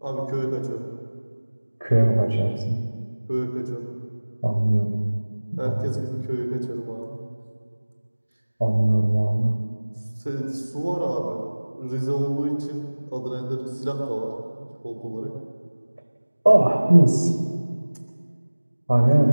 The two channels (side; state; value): both; inverted; correlation -1.00